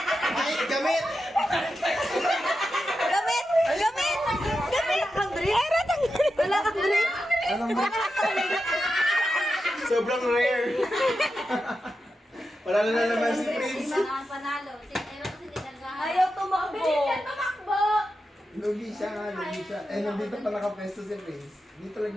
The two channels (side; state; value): both; normal; correlation 0.89